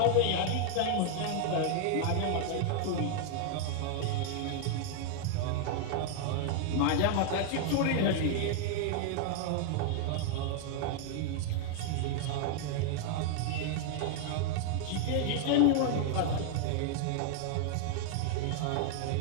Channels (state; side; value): different; both; correlation 0.00